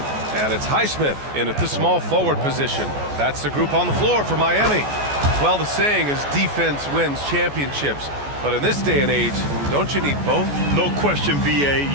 And it's Highsmith in at the small forward position. That's the group on the floor for Miami. Well, the saying is defense wins championships. But in this day and age, don't you need both? No question, BA.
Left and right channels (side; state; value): left; late; 14 ms